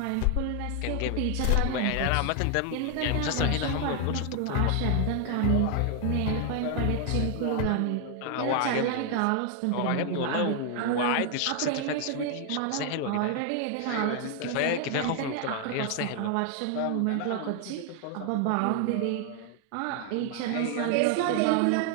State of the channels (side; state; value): both; different; correlation 0.00